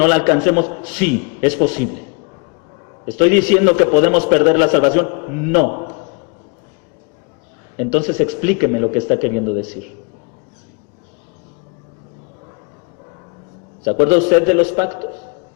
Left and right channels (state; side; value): quieter; right; 33.4 dB